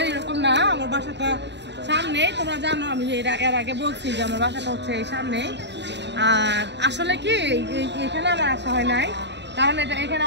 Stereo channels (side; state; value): left; late; 0.51 ms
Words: এরকম না। আমার বাসাটা সামনেই, তোমরা জানো আমি এর আগে বলছি যে আমার বাসাটা হচ্ছে এই সামনেই। আর আসলে কি এখানে আমার আসা হয় নাই, কারণ এখানে